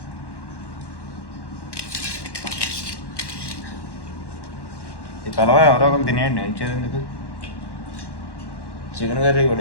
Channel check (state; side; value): late; right; 1.1 ms